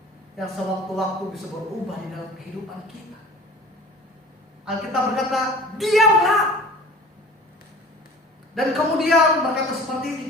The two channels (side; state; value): both; normal; correlation 0.43